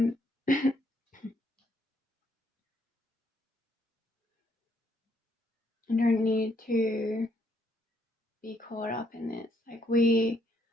You don't need to be caught up in this. Like, we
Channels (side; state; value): both; normal; correlation 0.71